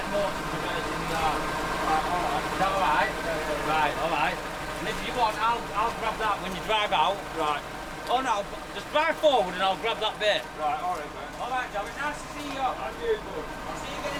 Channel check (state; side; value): identical; both; correlation 1.00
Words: Morton reverse in the yard? Is that alright? Right, alright. And if you want, I'll grab that when you drive out. Right. Oh no, just drive forward and I'll grab that bit. Right, alright, man. Alright, Joe, it's nice to see you. And you, bud. I'll see you again